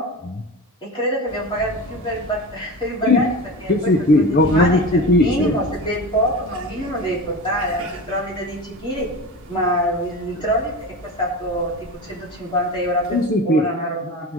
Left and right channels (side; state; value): both; normal; correlation 0.29